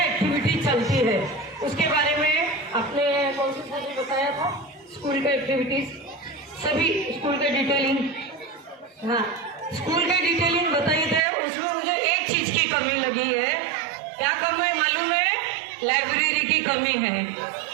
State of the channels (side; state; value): left; drops out; at 11.2 s